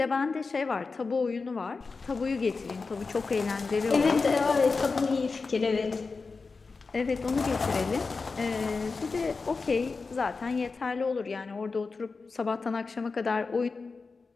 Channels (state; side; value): quieter; right; 4.3 dB